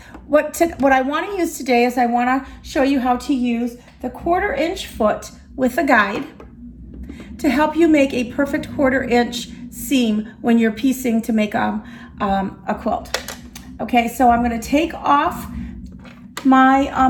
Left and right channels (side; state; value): both; identical; correlation 1.00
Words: What I want to use today is I want to show you how to use the 1/4 inch foot with a guide to help you make a perfect 1/4 inch seam when you're piecing to make a quilt. Okay, so I'm going to take off my